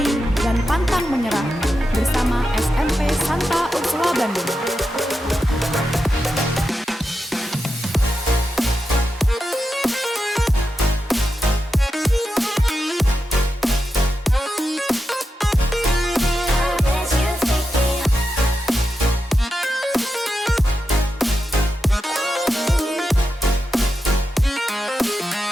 dan pantang menyerah bersama SMP Santa Ursula Bandung.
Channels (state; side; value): normal; both; correlation 0.89